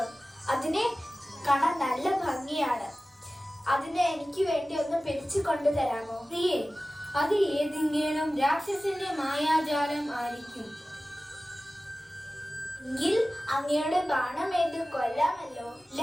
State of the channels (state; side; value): normal; both; correlation 0.96